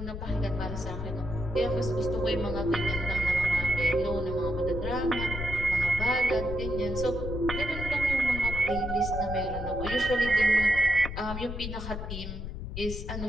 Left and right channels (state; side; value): noise; left; rumble, 6 dB below the sound